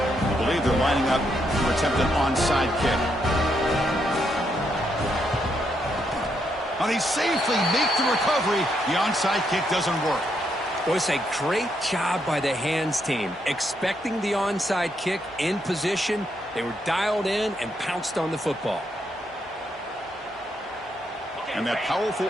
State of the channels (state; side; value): normal; both; correlation 0.77